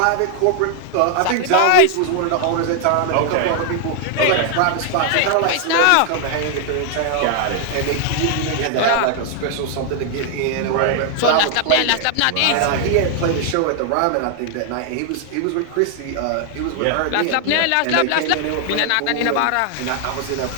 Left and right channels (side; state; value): both; different; correlation 0.00